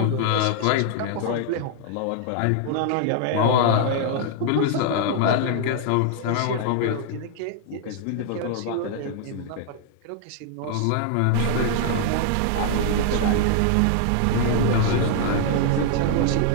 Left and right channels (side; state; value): both; different; correlation -0.01